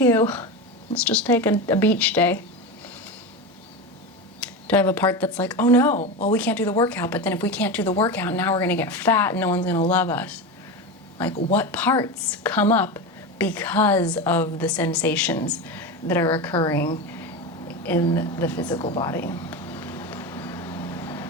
let's just take a beach day. Do I have a part that's like, oh no, well, we can't do the workout, but then if we can't do the workout, now we're gonna get fat and no one's gonna love us. Like, what parts come up because of the sensations that are occurring in the physical body?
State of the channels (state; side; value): normal; both; correlation 0.21